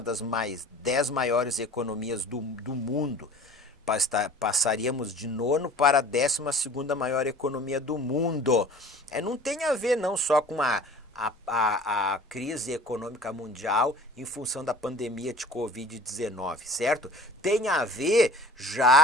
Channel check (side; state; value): both; normal; correlation 0.44